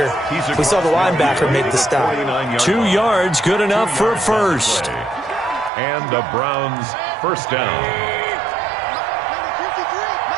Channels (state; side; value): drops out; left; at 5.7 s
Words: We saw the linebacker make the stop. 2 yards, good enough for a first. And the Browns first down.